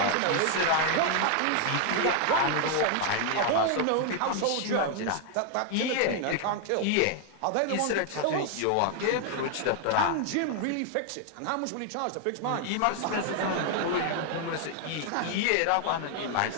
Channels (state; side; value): different; both; correlation 0.00